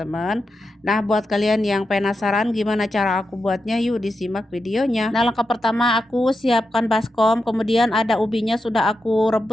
Nah, buat kalian yang penasaran gimana cara aku buatnya, yuk disimak videonya. Nah, langkah pertama aku siapkan baskom, kemudian ada ubinya sudah aku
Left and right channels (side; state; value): both; normal; correlation 0.88